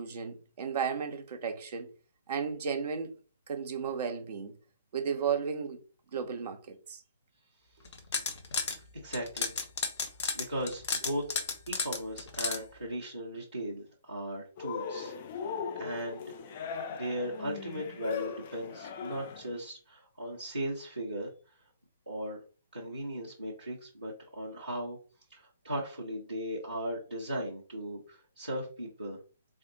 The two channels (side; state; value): both; inverted; correlation -0.51